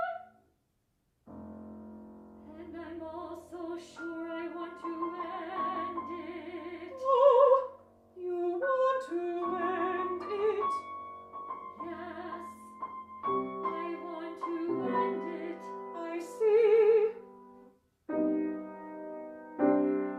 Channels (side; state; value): both; identical; correlation 1.00